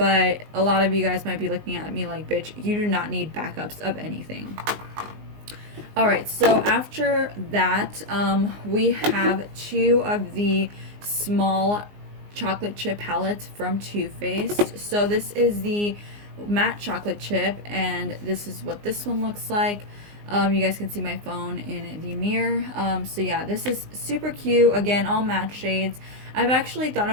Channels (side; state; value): left; late; 19 ms